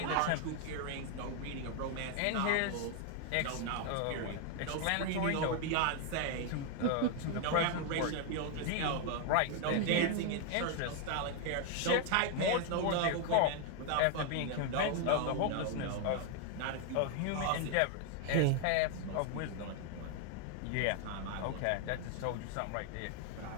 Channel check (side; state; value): both; different; correlation 0.00